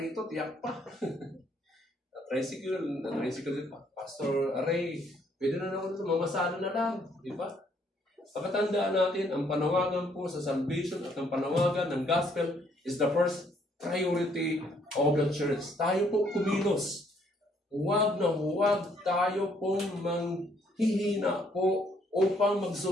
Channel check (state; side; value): normal; both; correlation 0.67